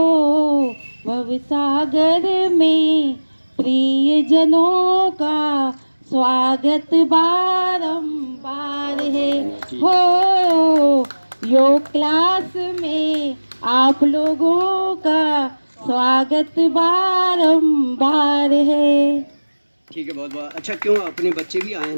भव सागर में प्रिय जनों का स्वागत बारंबार है हो, योग क्लास में आप लोगों का स्वागत बारंबार है। ठीक है बहुत बहुत अच्छा। क्यों अपने बच्चे भी आए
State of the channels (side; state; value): both; inverted; correlation -1.00